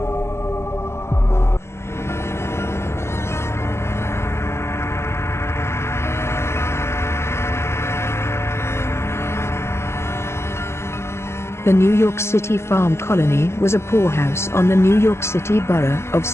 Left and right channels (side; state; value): right; late; 0.13 ms